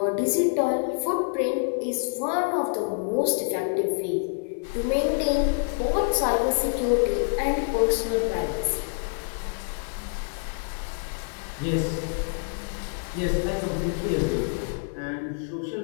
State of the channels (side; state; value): right; silent; 60 dB below the other